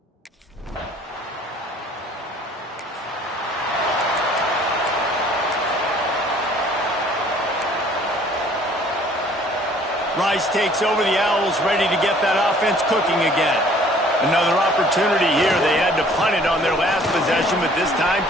Rice takes over. The Owls ready to get that offense cooking again. Another opportunity here. They had to punt it on their last possession, but this time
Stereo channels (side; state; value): both; normal; correlation 0.55